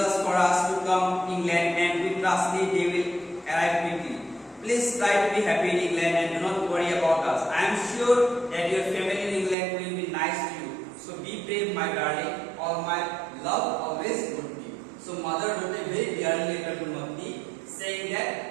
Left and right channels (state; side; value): drops out; left; at 9.6 s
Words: for us to come to England and we trust they will arrive quickly. Please try to be happy in England and do not worry about us. I am sure that your family in England will be nice to you. So be brave, my darling. All my love always would be. So mother wrote a very dear letter to Matti saying